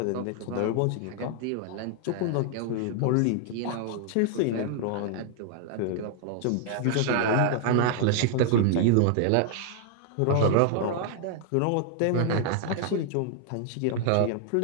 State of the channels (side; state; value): both; different; correlation 0.00